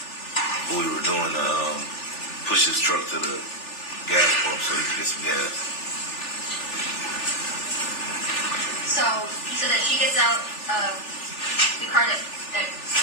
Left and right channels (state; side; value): late; right; 3.4 ms